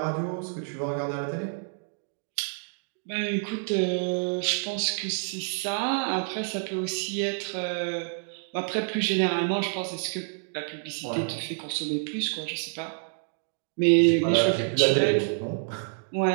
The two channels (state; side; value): silent; left; digital silence